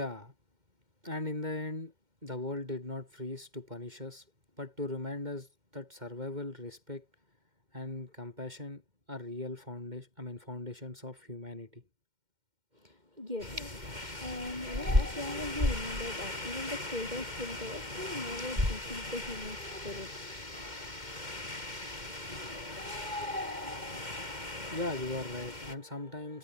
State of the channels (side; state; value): left; late; 2.1 ms